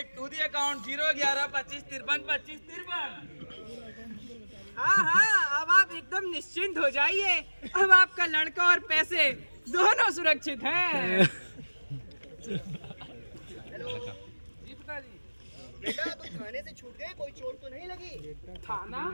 to the account 01125532553। हाँ, अब आप एकदम निश्चिंत हो जाइए। अब आपका लड़का और पैसे दोनों सुरक्षित हैं। हेलो जी पिताजी। बेटा तुम थाने से छूट गए, कोई चोट तो नहीं लगी? थाना?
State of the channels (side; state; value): both; inverted; correlation -1.00